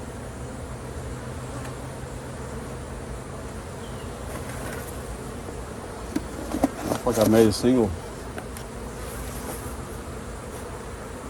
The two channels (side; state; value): both; identical; correlation 1.00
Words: Looks like I made a single.